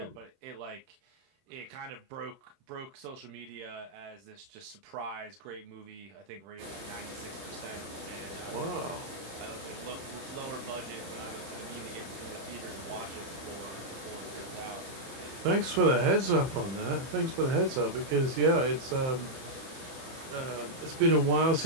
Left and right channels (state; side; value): late; left; 31 ms